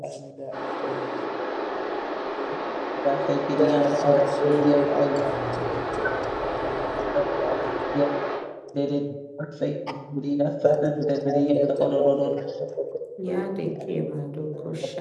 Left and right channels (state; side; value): identical; both; correlation 1.00